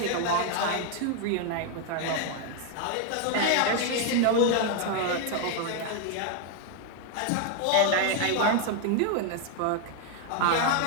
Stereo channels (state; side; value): different; both; correlation 0.01